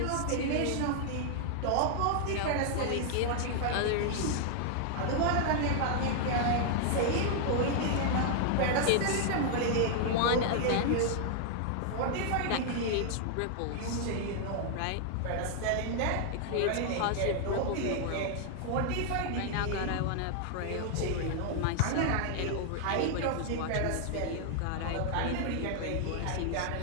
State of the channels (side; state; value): both; different; correlation 0.00